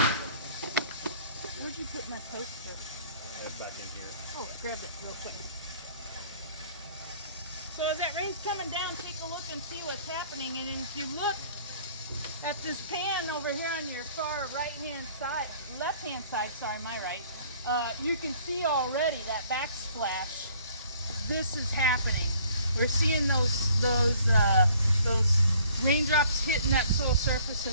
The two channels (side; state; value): both; inverted; correlation -0.57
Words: Where'd you put my poster? It's back in here. Oh, I grabbed it real quick. So as that rain's coming down, take a look and see what's happening. And if you look at this pan over here on your far right-hand side, left-hand side, sorry, my right, you can see already that backsplash. This is happening. We're seeing those raindrops hitting that soil surface